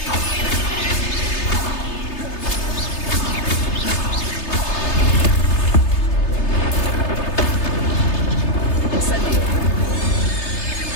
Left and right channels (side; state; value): right; late; 3.3 ms